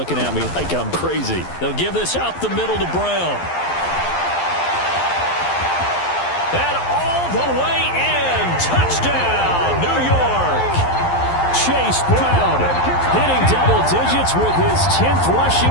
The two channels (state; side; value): late; right; 11 ms